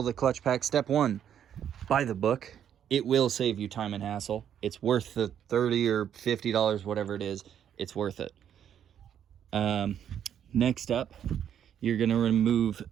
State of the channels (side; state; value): left; quieter; 9.4 dB